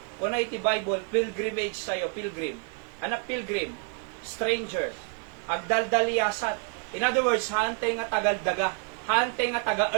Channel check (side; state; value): left; quieter; 40.0 dB